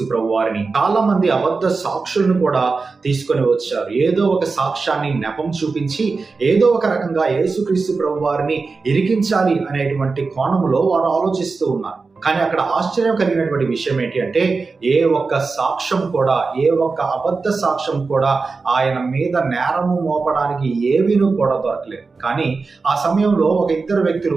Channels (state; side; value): quieter; left; 4.3 dB